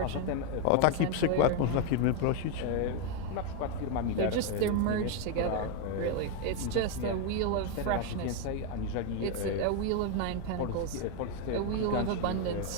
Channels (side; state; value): both; different; correlation 0.01